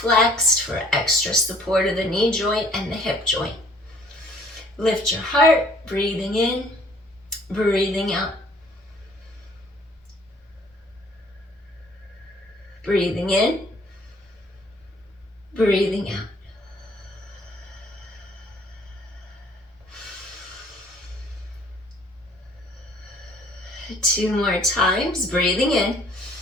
for extra support of the knee joint and the hip joint. Lift your heart, breathing in, breathing out. Breathing in, breathing out. Two more times, breathing in,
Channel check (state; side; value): normal; both; correlation 0.57